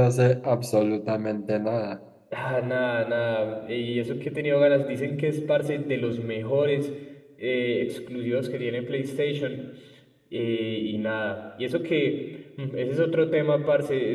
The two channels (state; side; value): identical; both; correlation 1.00